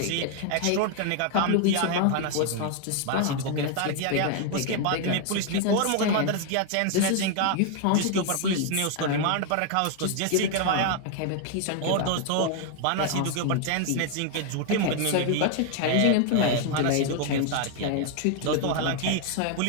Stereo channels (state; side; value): different; both; correlation 0.00